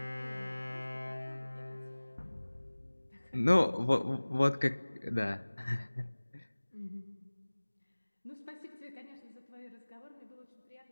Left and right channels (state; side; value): inverted; both; correlation -1.00